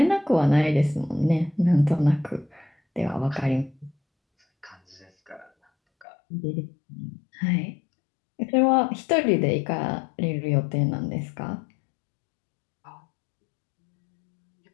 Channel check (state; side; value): drops out; right; at 6.1 s